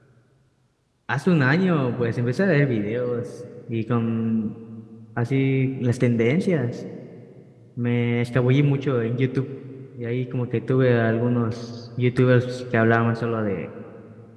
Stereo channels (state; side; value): identical; both; correlation 1.00